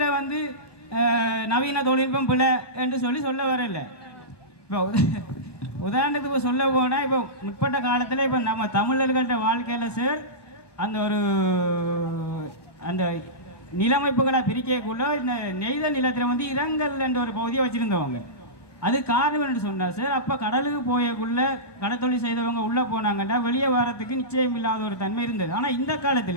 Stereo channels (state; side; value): late; right; 1.2 ms